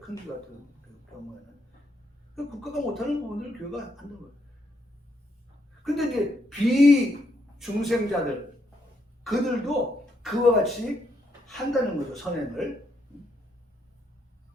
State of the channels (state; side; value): normal; both; correlation 0.76